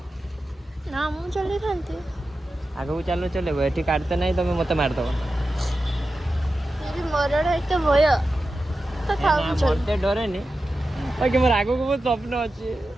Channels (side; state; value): both; normal; correlation 0.92